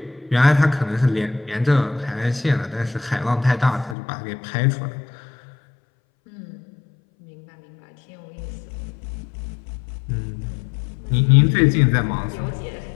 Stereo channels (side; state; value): right; drops out; at 4.0 s